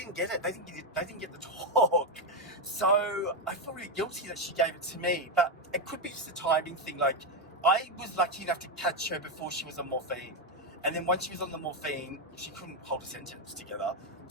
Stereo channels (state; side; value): normal; both; correlation 0.06